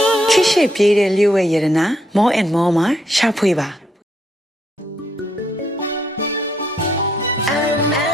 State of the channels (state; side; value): normal; both; correlation 0.74